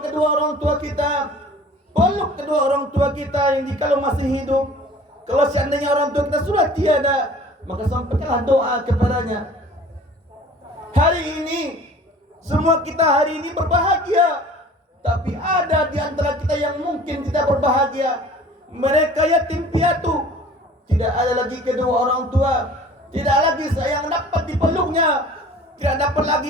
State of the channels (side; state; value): both; normal; correlation 0.46